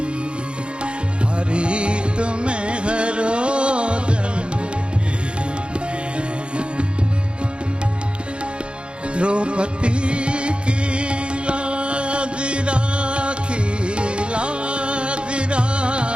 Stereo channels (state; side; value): late; left; 0.056 ms